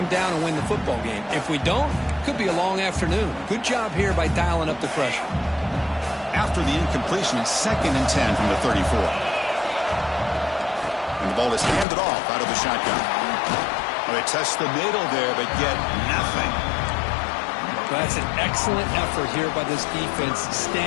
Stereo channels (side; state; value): right; drops out; at 11.9 s